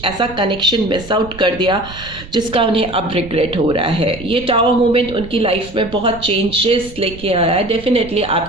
ऐसा कनेक्शन मिस आउट कर दिया जिसका उन्हें अब रिग्रेट हो रहा है। ये टावर मोमेंट उनकी लाइफ में बहुत चेंजेस लेके आया है, डेफिनेटली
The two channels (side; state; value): right; noise; rumble, 16 dB below the sound